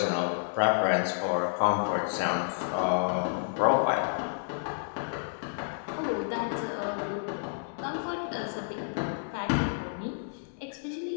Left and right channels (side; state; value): right; silent; digital silence